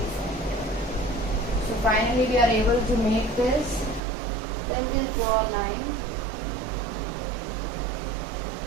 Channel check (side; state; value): left; drops out; at 4.0 s